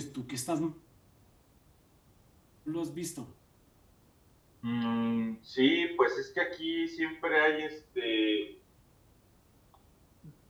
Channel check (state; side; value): identical; both; correlation 1.00